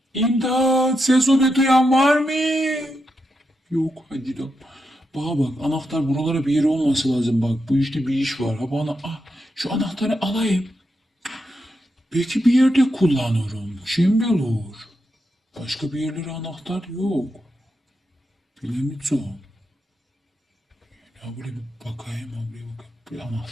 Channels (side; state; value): both; normal; correlation 0.85